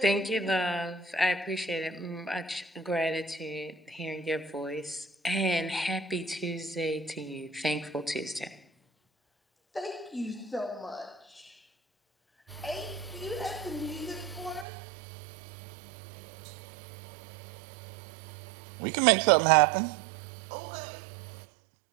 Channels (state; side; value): drops out; left; at 14.7 s